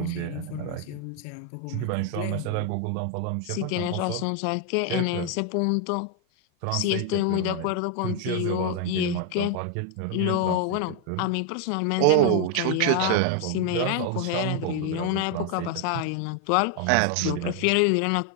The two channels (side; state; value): both; different; correlation 0.00